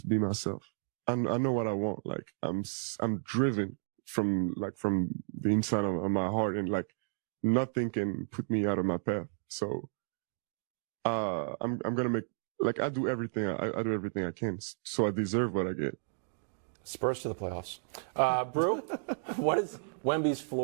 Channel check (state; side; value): silent; left; digital silence